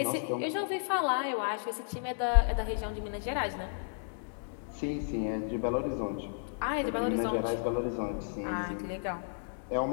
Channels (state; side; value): silent; right; digital silence